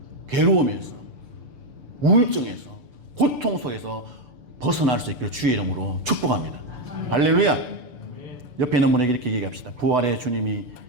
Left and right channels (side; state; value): left; late; 6.8 ms